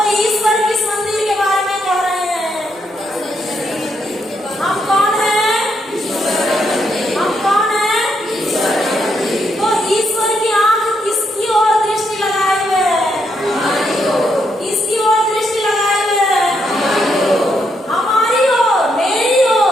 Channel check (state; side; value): normal; both; correlation 0.78